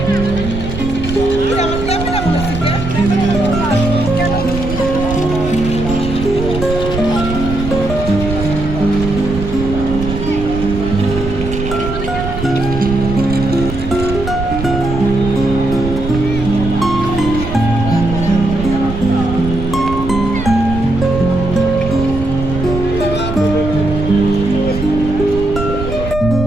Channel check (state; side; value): noise; right; rumble, 6 dB below the sound